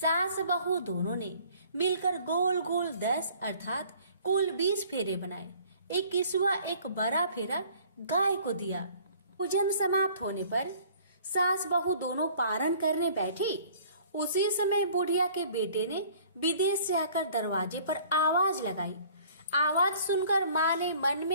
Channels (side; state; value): both; inverted; correlation -0.53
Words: बहू दोनों ने मिलकर गोल गोल 10 अर्थात कुल 20 फेरे बनाए। 21वां एक बड़ा फेरा गाय को दिया। पूजन समाप्त होने पर सास बहू दोनों पारण करने बैठी। उसी समय बुढ़िया के बेटे ने विदेश से आकर दरवाजे पर आवाज लगाई। आवाज सुनकर माँ ने मन